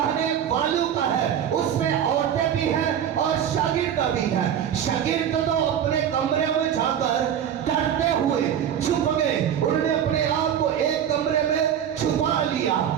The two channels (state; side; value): quieter; left; 9.3 dB